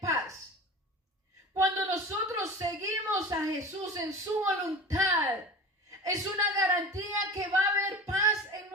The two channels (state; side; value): normal; both; correlation 0.34